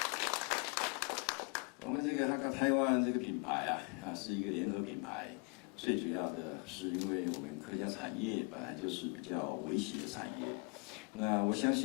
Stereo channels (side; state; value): right; quieter; 35.2 dB